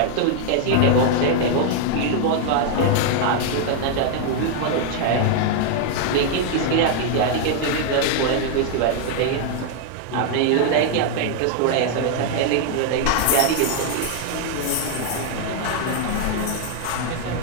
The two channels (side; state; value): both; different; correlation 0.00